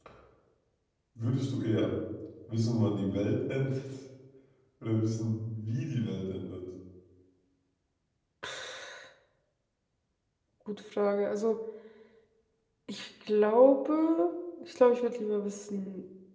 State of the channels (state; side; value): identical; both; correlation 1.00